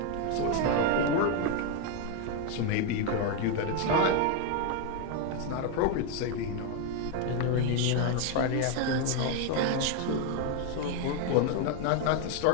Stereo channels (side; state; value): both; different; correlation 0.01